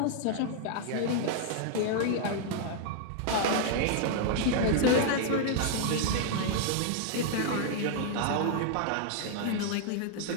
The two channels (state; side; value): different; both; correlation 0.00